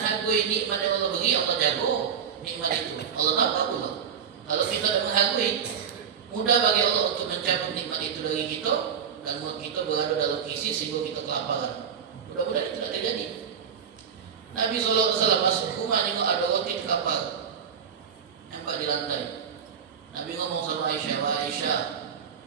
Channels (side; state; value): left; quieter; 7.4 dB